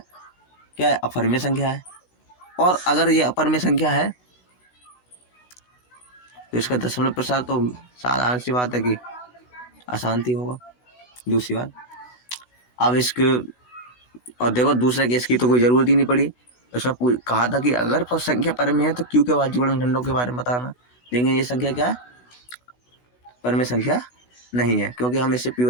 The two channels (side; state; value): right; late; 16 ms